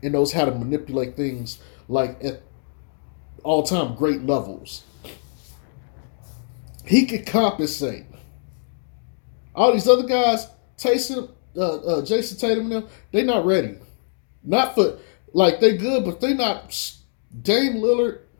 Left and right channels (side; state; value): right; silent; 63 dB below the other